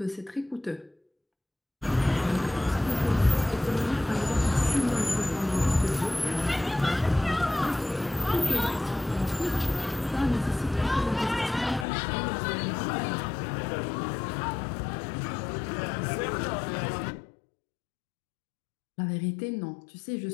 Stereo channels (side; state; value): right; drops out; at 11.9 s